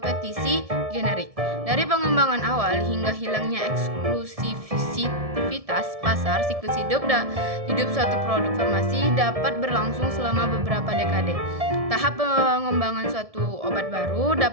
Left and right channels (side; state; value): left; late; 1.7 ms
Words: generik. Dari pengembangan awal hingga hilangnya eksklusivitas pasar, siklus hidup suatu produk farmasi dapat berlangsung selama beberapa dekade. Tahap pengembangan suatu obat baru